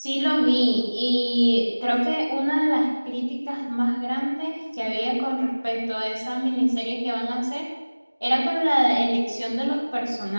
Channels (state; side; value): inverted; both; correlation -1.00